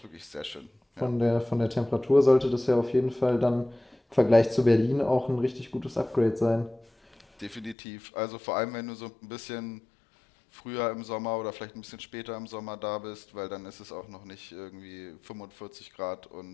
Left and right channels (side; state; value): right; drops out; at 7.8 s